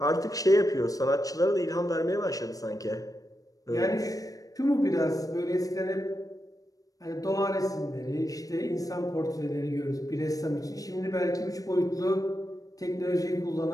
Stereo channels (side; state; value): right; late; 0.17 ms